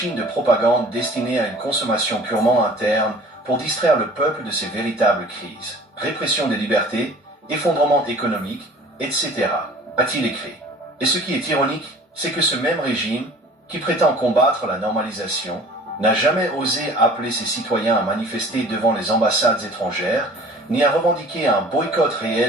de propagande destinée à une consommation purement interne pour distraire le peuple de ses véritables crises. Répression des libertés, effondrement économique, etc., a-t-il écrit. Et ce qui est ironique, c'est que ce même régime, qui prétend combattre la normalisation, n'a jamais osé appeler ses citoyens à manifester devant les ambassades étrangères, ni à revendiquer un boycott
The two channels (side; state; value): both; normal; correlation 0.47